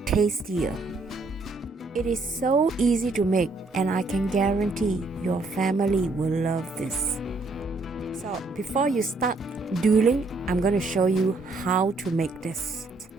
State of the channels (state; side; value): quieter; left; 3.4 dB